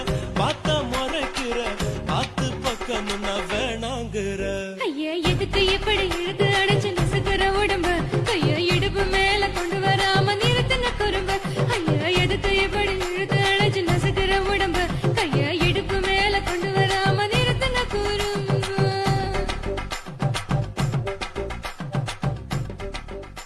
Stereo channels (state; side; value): identical; both; correlation 1.00